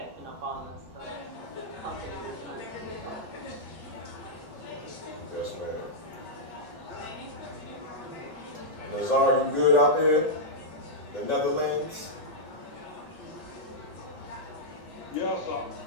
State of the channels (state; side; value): normal; both; correlation -0.07